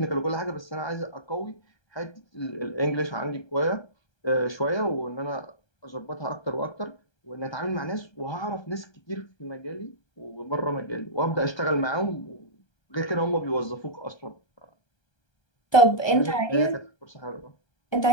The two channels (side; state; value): right; late; 1.3 ms